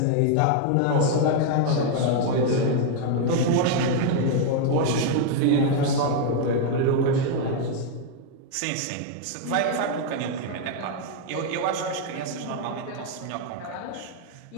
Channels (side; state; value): both; different; correlation 0.00